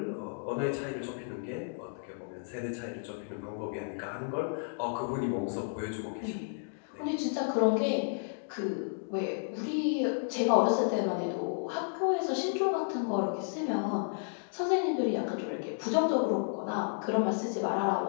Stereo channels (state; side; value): silent; right; digital silence